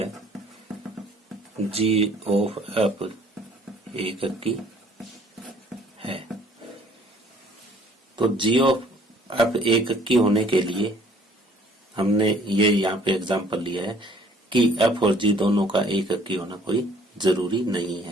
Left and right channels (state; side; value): normal; both; correlation 0.57